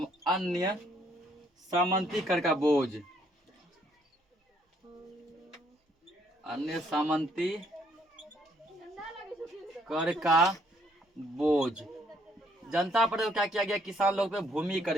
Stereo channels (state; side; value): normal; both; correlation 0.68